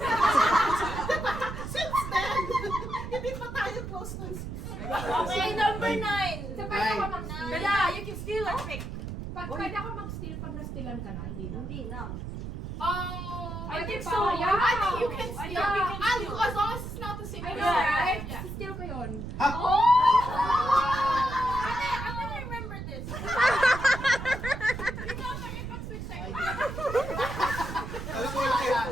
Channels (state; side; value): noise; right; rumble, 7 dB below the sound